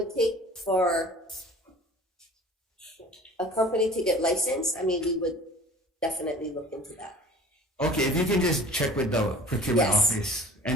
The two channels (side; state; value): both; normal; correlation 0.44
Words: take for a company to get licensed, I mean, we would definitely look into that. Okay, if you can just check with the procurement office,